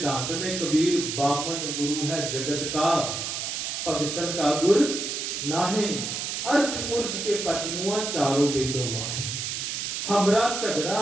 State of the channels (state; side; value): noise; right; hiss, 3 dB below the sound